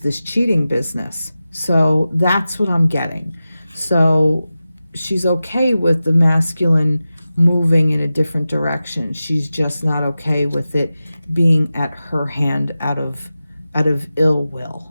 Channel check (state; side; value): inverted; both; correlation -0.94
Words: cheating business. So that's what I'm getting. So she's okay with the masculine moving in a different direction. She's just not okay with it being at her hand out of ill will.